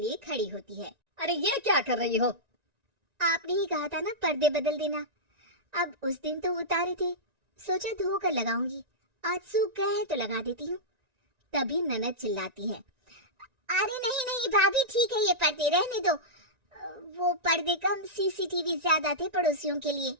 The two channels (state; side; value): late; left; 1.9 ms